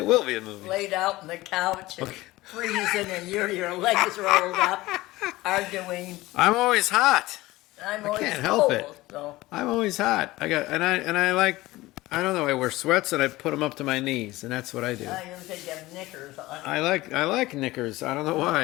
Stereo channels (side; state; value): right; quieter; 18.8 dB